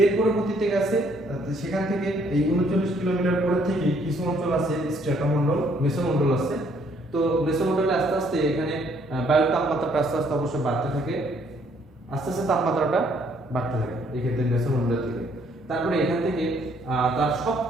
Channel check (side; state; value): both; normal; correlation 0.66